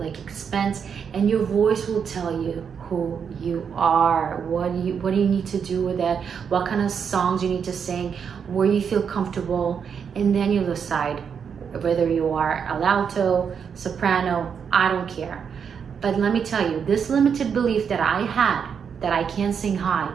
expense, and your voice will tell you who you are, what do you need to do with it, what kind of songs you need to sing, where you feel comfortable, and then you decide whether you are a alto, soprano, I don't care. But let me tell you, this limited belief that I had that I can't sing high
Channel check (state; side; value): quieter; left; 7.0 dB